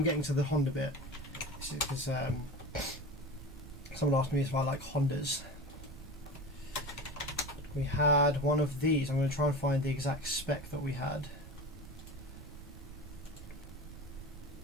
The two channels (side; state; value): right; noise; rumble, 15 dB below the sound